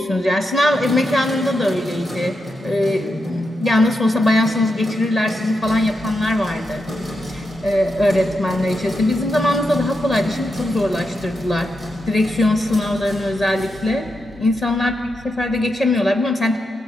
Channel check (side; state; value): both; normal; correlation 0.86